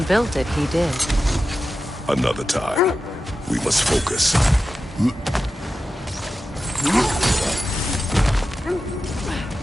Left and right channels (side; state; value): both; normal; correlation 0.92